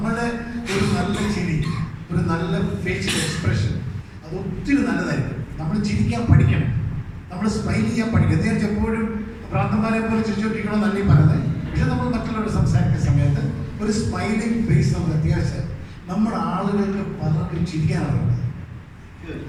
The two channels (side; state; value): both; identical; correlation 1.00